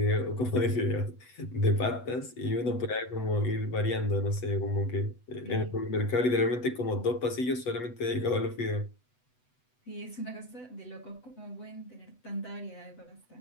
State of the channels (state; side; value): late; right; 8.0 ms